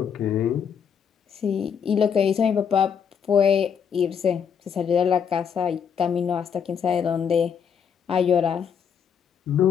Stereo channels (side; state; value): right; quieter; 7.3 dB